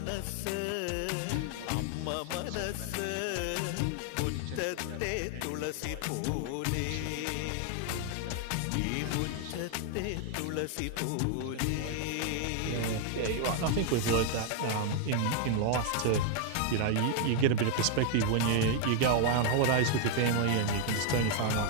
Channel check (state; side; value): different; both; correlation 0.00